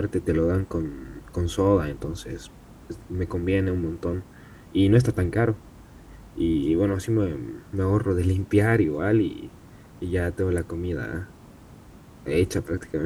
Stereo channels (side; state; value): both; identical; correlation 1.00